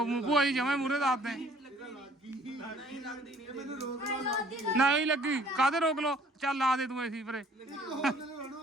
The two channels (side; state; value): both; normal; correlation 0.57